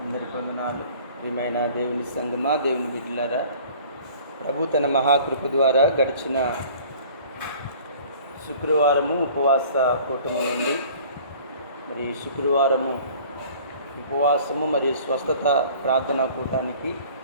ప్రియమైన దేవుని సంగమా, దేవుని బిడ్డలారా, ప్రభు తన మహాకృప ద్వారా గడిచిన శుక్రవారము ఉపవాస కూటమి నుండి మరి శుక్రవారము ఉపవాసము మరియు స్వస్థత ప్రార్థనా కూటానికి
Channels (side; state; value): both; inverted; correlation -0.49